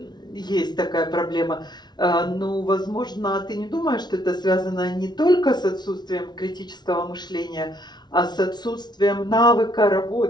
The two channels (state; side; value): late; right; 0.20 ms